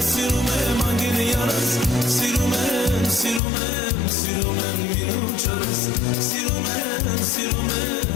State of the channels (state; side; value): drops out; right; at 3.4 s